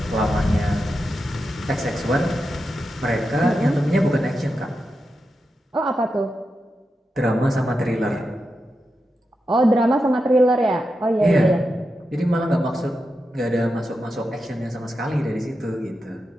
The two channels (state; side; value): normal; both; correlation 0.88